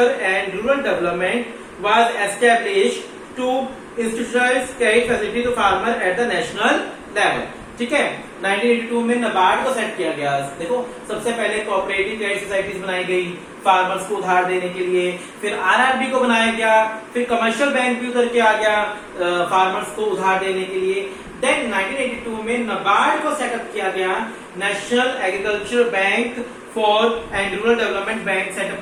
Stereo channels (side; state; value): both; identical; correlation 1.00